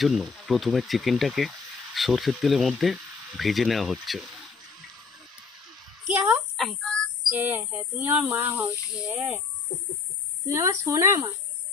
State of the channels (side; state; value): right; quieter; 4.8 dB